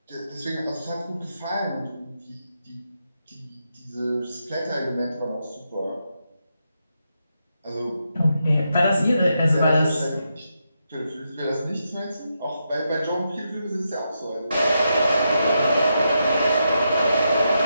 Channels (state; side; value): inverted; both; correlation -0.84